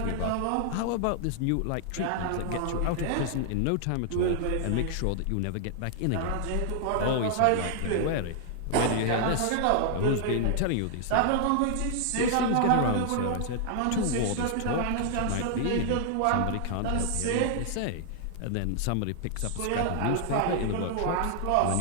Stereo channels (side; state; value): both; different; correlation -0.01